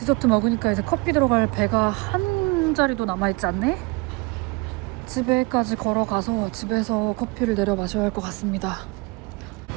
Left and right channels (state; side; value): quieter; left; 26.4 dB